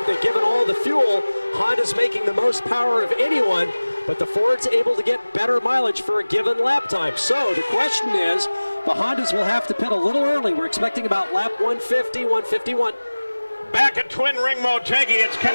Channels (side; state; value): both; inverted; correlation -1.00